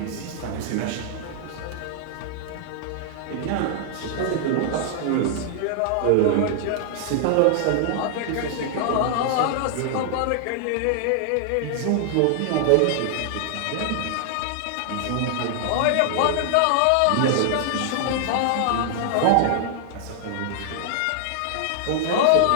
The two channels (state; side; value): different; both; correlation -0.01